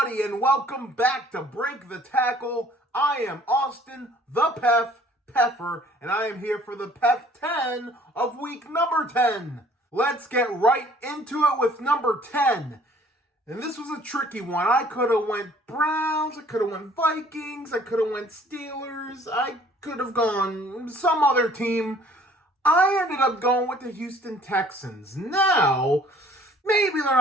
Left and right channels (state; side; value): normal; both; correlation 0.56